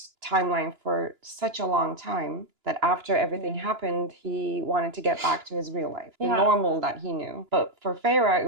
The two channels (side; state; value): left; late; 2.9 ms